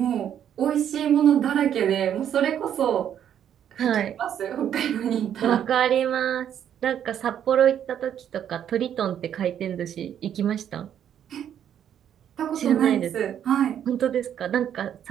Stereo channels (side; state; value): left; quieter; 9.6 dB